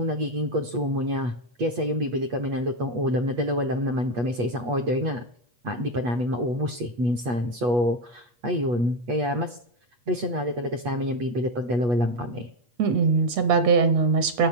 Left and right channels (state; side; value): late; left; 8.3 ms